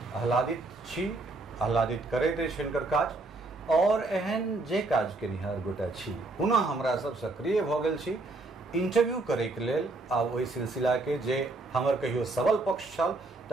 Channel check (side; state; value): left; quieter; 3.1 dB